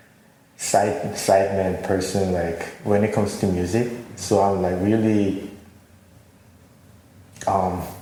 sideman person, like when it comes to music. So I'm like really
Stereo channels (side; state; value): both; identical; correlation 1.00